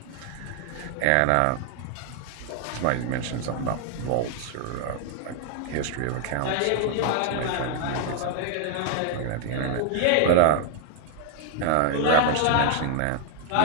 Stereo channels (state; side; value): different; both; correlation 0.00